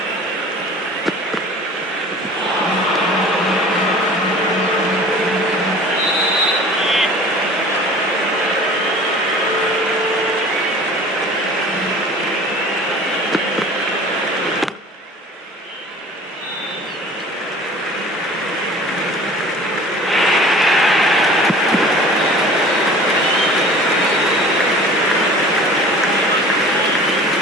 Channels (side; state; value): both; normal; correlation 0.44